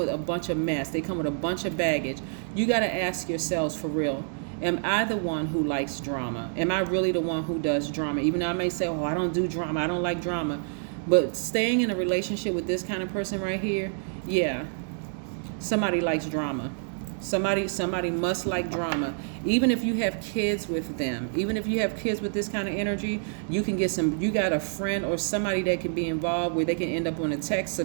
a bunch of mess, they come with a bunch of baggage, you got to ask yourselves for real, am I the one who likes drama? Am I really the one who does drama? Even though I may say, oh, I don't do drama, I don't like drama. But staying in a relationship with this kind of person right here, yeah, somebody likes drama. Somebody must like drama. Even if you have kids with them, even if you have kids with this kind of energy, you got a friend or somebody that can be involved where they can end up on a text so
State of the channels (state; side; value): silent; left; digital silence